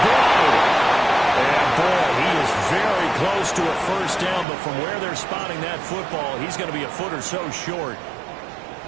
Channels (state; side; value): drops out; left; at 4.5 s